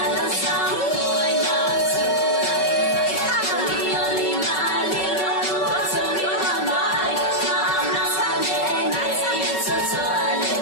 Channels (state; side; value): late; right; 5.3 ms